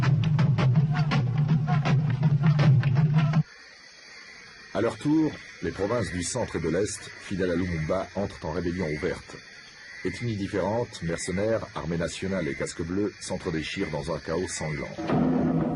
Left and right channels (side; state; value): both; identical; correlation 1.00